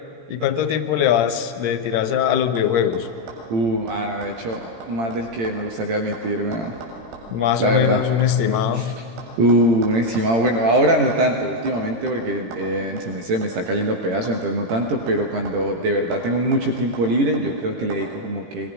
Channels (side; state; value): left; late; 18 ms